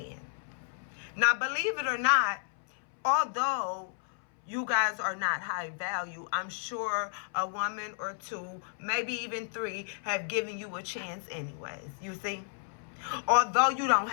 Now, believe it or not, although you guys are not high value, I'm sure a woman or two, maybe even three, have given you a chance anyways, you see. Although you don't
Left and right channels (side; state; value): right; silent; 57 dB below the other